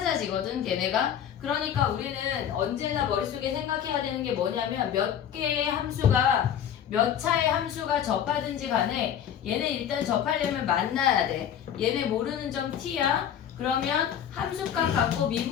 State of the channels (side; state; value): right; quieter; 9.3 dB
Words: 걔네가. 그러니까 우리는 언제나 머릿속에 생각해야 되는 게 뭐냐면 몇 개의 함수가 몇 차의 함수가 접하든지 간에 얘네 일단 접하려면 만나야 돼. 얘네 모르는 점 t야. 그러면 함수값 같고